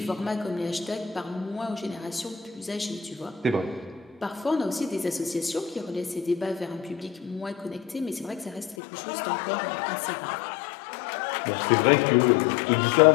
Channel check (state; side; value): drops out; right; at 8.8 s